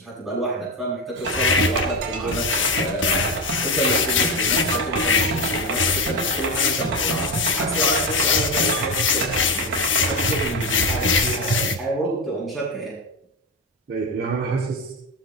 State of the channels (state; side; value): normal; both; correlation 0.15